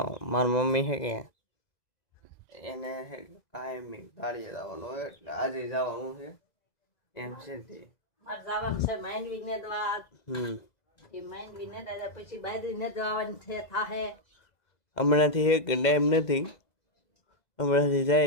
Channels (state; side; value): late; right; 2.0 ms